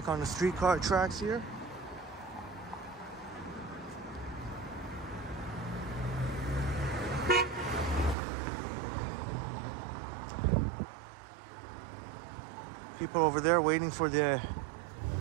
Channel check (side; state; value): left; drops out; at 8.2 s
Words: on the streetcar tracks here. People over there waiting for the